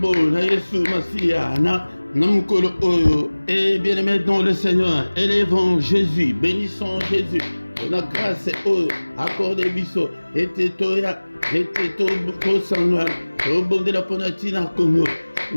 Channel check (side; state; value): both; inverted; correlation -1.00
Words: na Yesu Masia na Namukolo Oyo. Et bien-aimé dans le Seigneur, élevons Jésus, bénissons Jésus. Pour la grâce Oyo, accordez biso, et toya, et to sangwa, au bon de la Ponatina Congo.